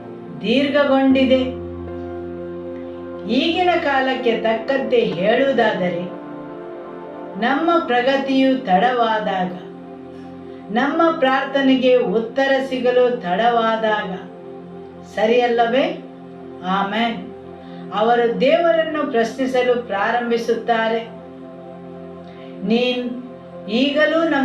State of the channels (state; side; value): identical; both; correlation 1.00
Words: ದೀರ್ಘಗೊಂಡಿದೆ. ಈಗಿನ ಕಾಲಕ್ಕೆ ತಕ್ಕಂತೆ ಹೇಳುವುದಾದರೆ, ನಮ್ಮ ಪ್ರಗತಿಯು ತಡವಾದಾಗ, ನಮ್ಮ ಪ್ರಾರ್ಥನೆಗೆ ಉತ್ತರ ಸಿಗಲು ತಡವಾದಾಗ ಸರಿಯಲ್ಲವೇ? ಆಮೆನ್. ಅವರು ದೇವರನ್ನು ಪ್ರಶ್ನಿಸಲು ಪ್ರಾರಂಭಿಸುತ್ತಾರೆ, ನೀನು ಈಗಲೂ